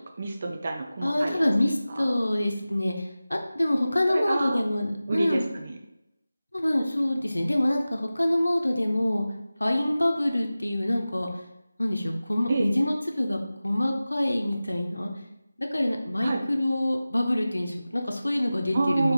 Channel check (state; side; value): inverted; both; correlation -0.96